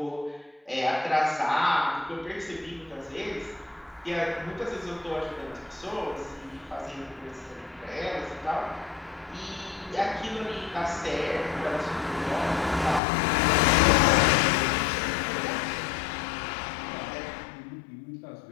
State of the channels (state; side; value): drops out; right; at 13.0 s